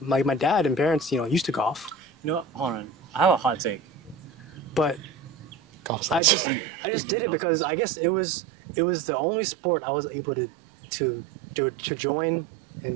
dad and parents, you know, used to golf, You know what? Hold on. I have a hot take. but Golf. I just did it because I guess it was the only sport I was able to join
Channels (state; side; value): drops out; left; at 6.2 s